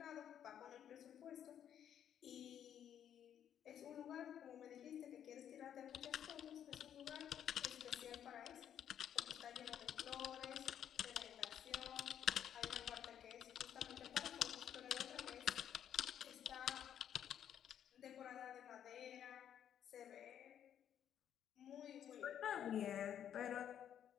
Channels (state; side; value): quieter; right; 9.7 dB